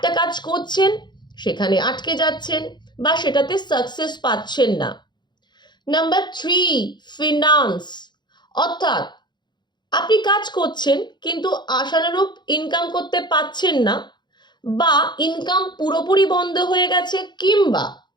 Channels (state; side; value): late; right; 0.21 ms